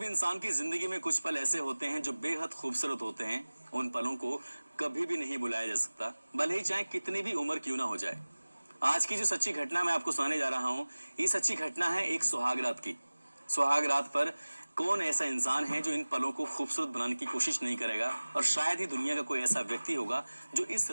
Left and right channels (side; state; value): both; inverted; correlation -1.00